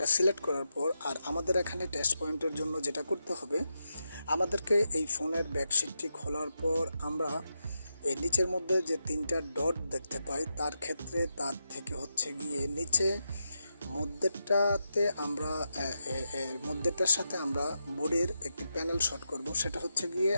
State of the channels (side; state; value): both; inverted; correlation -0.87